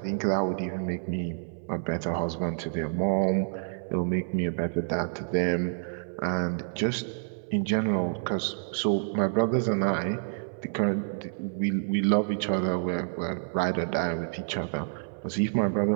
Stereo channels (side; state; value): left; silent; 57 dB below the other